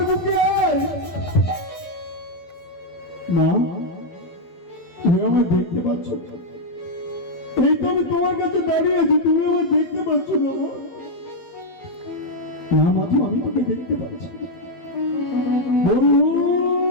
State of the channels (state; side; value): late; right; 12 ms